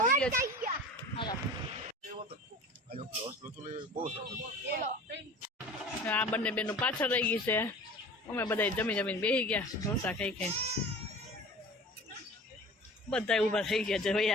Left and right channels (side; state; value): both; normal; correlation 0.40